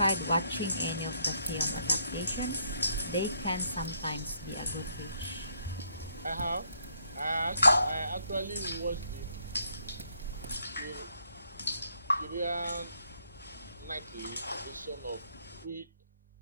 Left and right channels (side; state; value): both; inverted; correlation -0.71